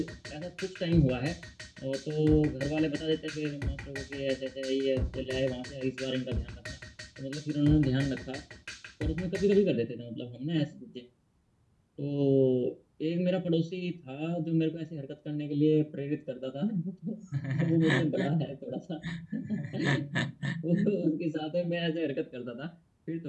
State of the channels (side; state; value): both; identical; correlation 1.00